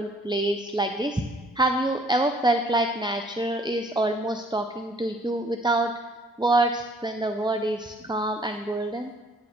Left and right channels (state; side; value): normal; both; correlation 0.59